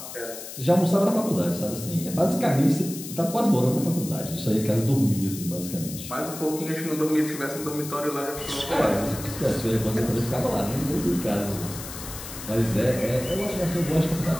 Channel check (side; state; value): left; noise; hiss, 11 dB below the sound